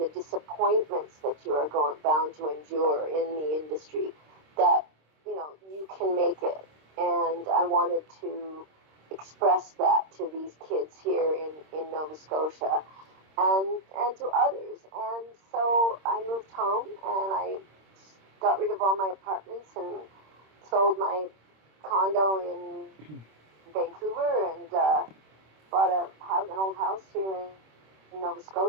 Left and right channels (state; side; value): late; left; 26 ms